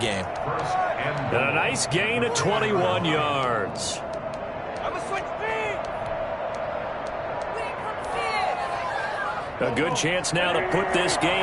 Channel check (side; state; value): both; identical; correlation 1.00